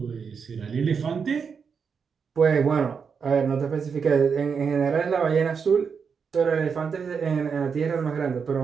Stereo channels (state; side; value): quieter; left; 6.1 dB